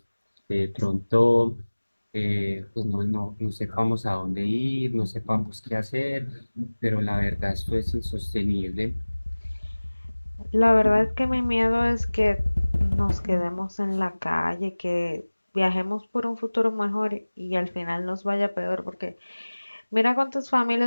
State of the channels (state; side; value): inverted; both; correlation -1.00